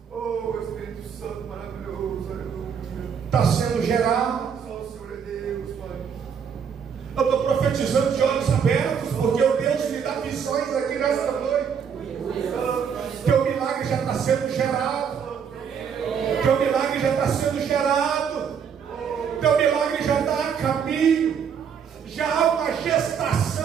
oh Espírito Santo maravilhoso, aleluia. Está sendo gerado. Só o Senhor é Deus, Pai. Eu estou profetizando de olhos abertos, porque o Deus me dá visões aqui nesta noite. Teu milagre já está sendo gerado. Teu milagre já está sendo gerado. Teu milagre já está a caminho. Já há uma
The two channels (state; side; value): quieter; left; 7.2 dB